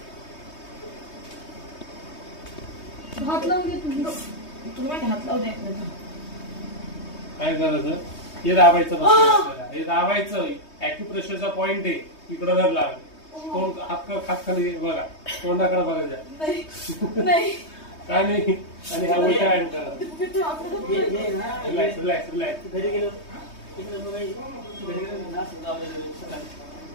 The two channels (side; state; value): right; late; 3.2 ms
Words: हात लावून घे तुम्ही हात लावू द्या. काय करायचं, हे दाबायचं बस. हे दाबायचं ॲक्युप्रेशरचा पॉइंट आहे. इकडं धर लाग. तोंड हात खाली बघा, तोंडाकडे बघायचं नाही काय नाही. आणि हा उलटा हँड करा. Relax relax relax. Relax